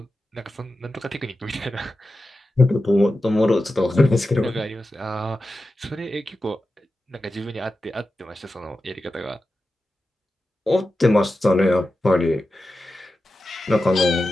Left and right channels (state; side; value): normal; both; correlation 0.92